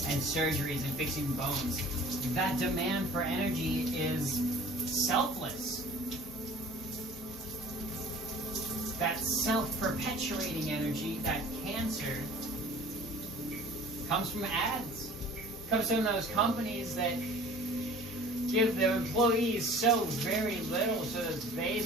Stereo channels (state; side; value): normal; both; correlation 0.46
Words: and surgeries and fixing bones. That demand for energy is selfless. That self-perpetuating energy, that cancer, Comes from ads. Comes from those companies that give their employees so very little so that they